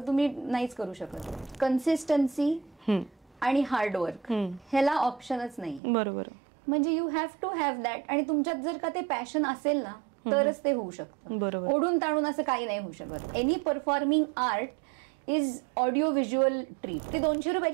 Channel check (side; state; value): left; drops out; at 5.8 s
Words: तुम्ही नाहीच करू शकत. कन्सिस्टन्सी आणि हार्डवर्क ह्याला ऑप्शनच नाही. बरोबर. म्हणजे you have to have that. आणि तुमच्यात जर का ते पॅशन असेल ना तरच ते होऊ शकतं. ओढून ताणून असं काही नाही होऊ शकत. Any performing art is audio visual treat. ती 200